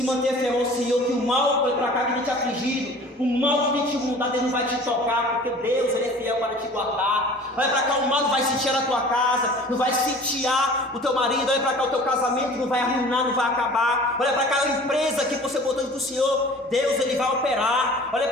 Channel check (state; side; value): normal; both; correlation 0.45